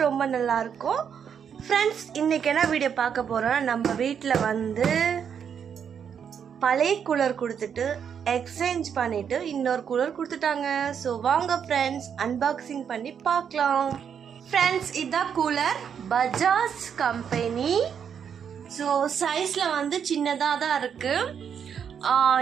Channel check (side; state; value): left; quieter; 7.7 dB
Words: ரொம்ப நல்லா இருக்கோம் ஃப்ரெண்ட்ஸ். இன்றைக்கி என்ன வீடியோ பார்க்க போகிறோன்னா, நம்ம வீட்டில் வந்து பழைய கூலர் கொடுத்துட்டு எக்ஸ்சேஞ்ச் பண்ணிவிட்டு இன்னொரு கூலர் கொடுத்துட்டாங்க. ஸோ வாங்க ஃப்ரெண்ட்ஸ் அன்பாக்சிங் பண்ணி பார்க்கலாம். ஃப்ரெண்ட்ஸ் இதுதான் கூலர், பஜாஜ் கம்பெனி. ஸோ சைஸில் வந்து சின்னதாக தான் இருக்குது.